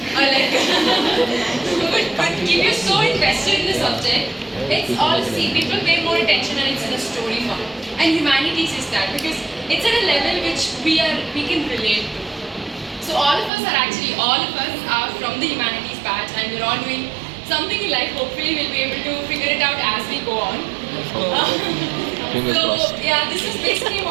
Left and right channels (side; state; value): left; drops out; at 13.5 s